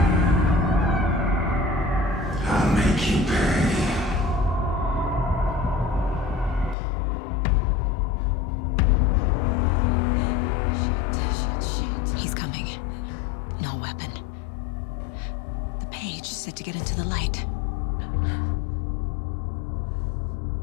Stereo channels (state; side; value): drops out; right; at 6.8 s